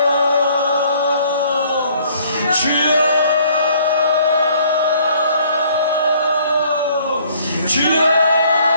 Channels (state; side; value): inverted; both; correlation -0.60